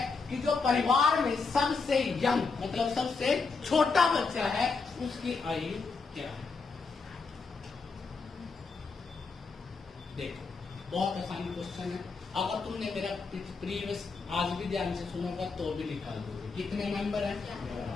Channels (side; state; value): right; quieter; 4.6 dB